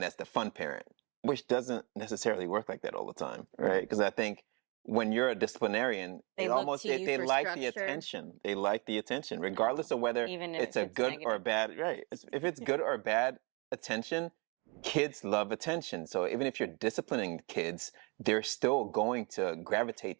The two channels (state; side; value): quieter; left; 31.0 dB